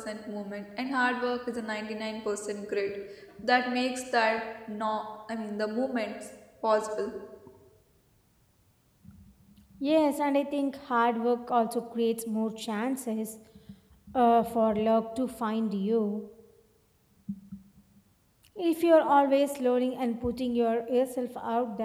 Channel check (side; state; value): both; identical; correlation 1.00